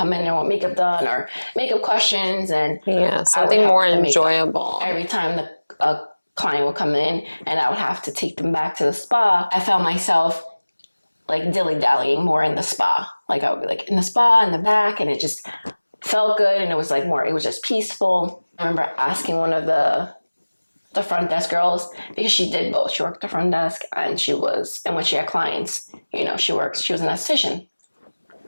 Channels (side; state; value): both; inverted; correlation -1.00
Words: in and want makeup done or makeup questions. And something more enjoyable. Every time a client would come in and I would have to take them back to the spa, I found myself like dilly-dallying more in the spa. Like I would be like in the spa in the back, and it just felt good, and it was like more, it was just peaceful. I remember asking one of the front desk girls, because she did both. She worked the front desk and when she had clients, she was an esthetician.